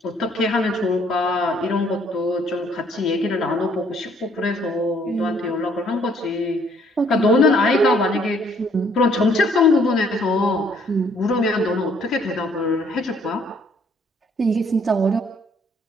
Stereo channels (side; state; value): both; normal; correlation 0.64